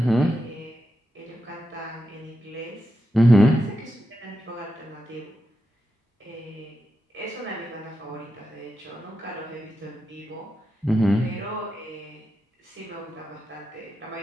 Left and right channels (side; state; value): both; normal; correlation 0.88